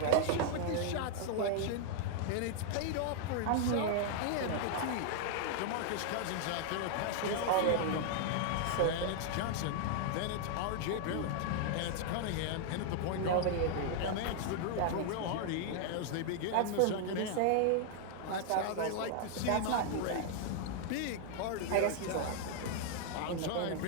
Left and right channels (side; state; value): both; different; correlation 0.00